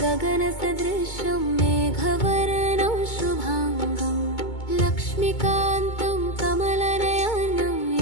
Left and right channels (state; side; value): late; right; 2.2 ms